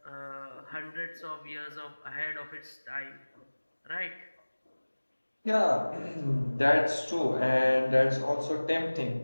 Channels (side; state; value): both; inverted; correlation -1.00